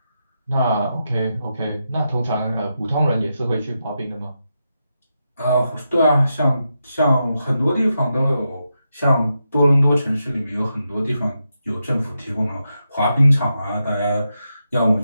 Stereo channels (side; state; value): both; inverted; correlation -0.86